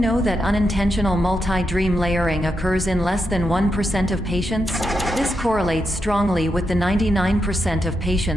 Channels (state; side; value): normal; both; correlation 0.84